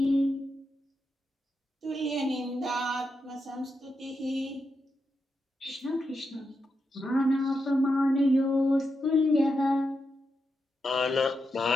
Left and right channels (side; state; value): both; normal; correlation 0.86